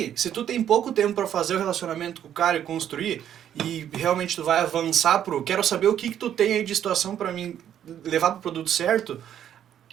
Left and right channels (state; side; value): quieter; left; 10.1 dB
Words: se tu tem pouco tempo para fazer o relacionamento com o cara e construir, e realmente tu vai avançar quero saber o que tu tem aí de situação para mim levar pro produto certo,